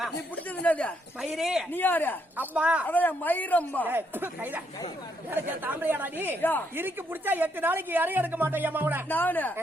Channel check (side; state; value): both; normal; correlation 0.75